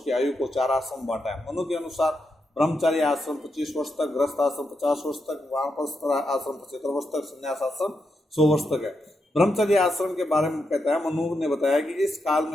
की आयु को 4 आश्रम बांटा है। मनु के अनुसार ब्रह्मचारी आश्रम 25 वर्ष तक, गृहस्थ आश्रम 50 वर्ष तक, वानप्रस्थ आश्रम 75 वर्ष तक, संन्यास आश्रम 100 वर्ष तक है। ब्रह्मचर्य आश्रम के बारे में कहता है, मनु ने बताया कि इस काल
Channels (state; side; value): normal; both; correlation 0.84